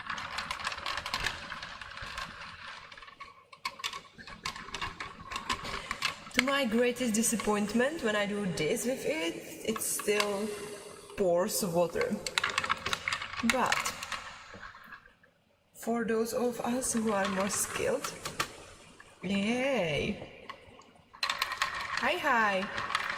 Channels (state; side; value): identical; both; correlation 1.00